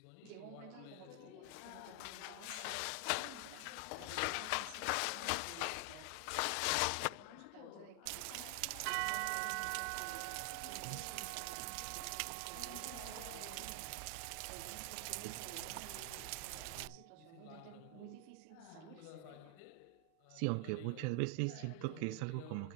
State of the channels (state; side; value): different; both; correlation 0.00